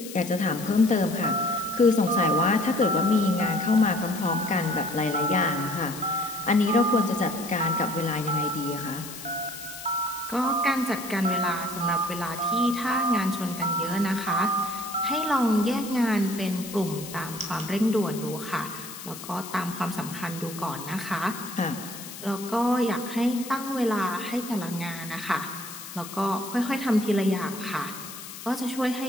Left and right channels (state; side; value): noise; left; hiss, 12 dB below the sound